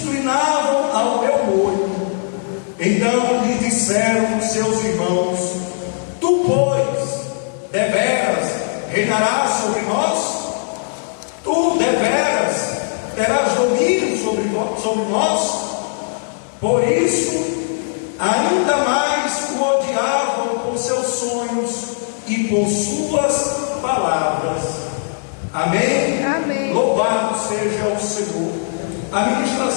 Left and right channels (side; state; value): right; silent; digital silence